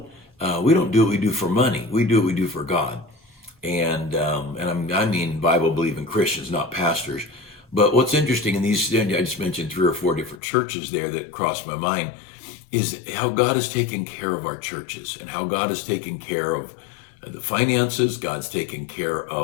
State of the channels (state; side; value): drops out; right; at 10.4 s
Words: do what we do for money. We do what we do for God. And I mean Bible believing Christians, not pastors. But what's interesting in these, I just mentioned 3 or 4 different churches there that crossed my mind, is how God has taken care of our churches and how God has taken care of the finances. God's taken care